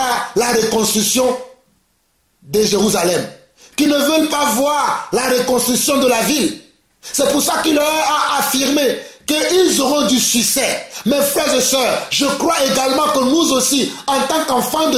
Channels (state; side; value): identical; both; correlation 1.00